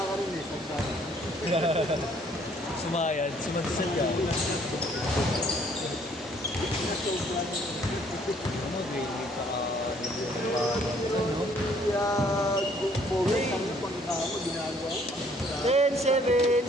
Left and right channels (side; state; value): both; normal; correlation 0.62